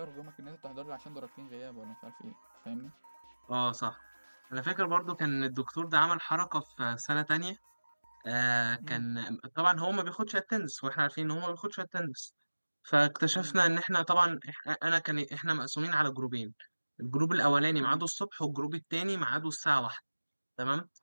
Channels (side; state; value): both; inverted; correlation -1.00